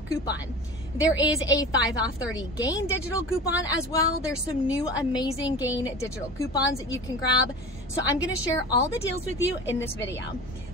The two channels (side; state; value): both; normal; correlation 0.34